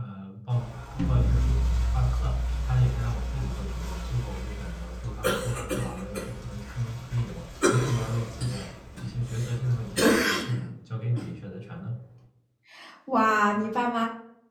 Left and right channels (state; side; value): identical; both; correlation 1.00